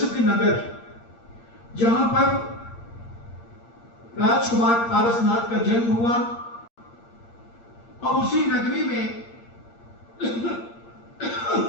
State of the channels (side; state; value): right; late; 8.6 ms